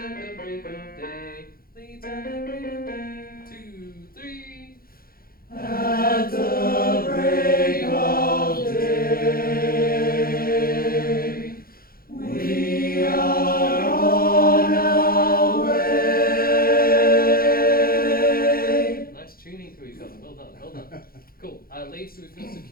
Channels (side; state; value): right; late; 0.43 ms